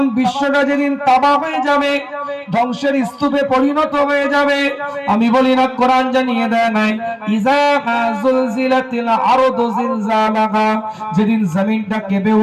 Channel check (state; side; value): identical; both; correlation 1.00